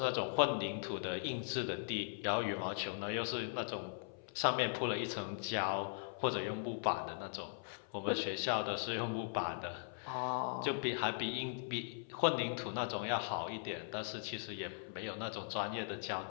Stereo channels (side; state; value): right; silent; 51 dB below the other